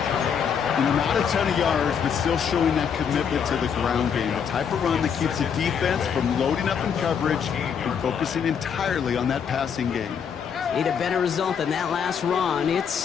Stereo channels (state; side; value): quieter; right; 7.3 dB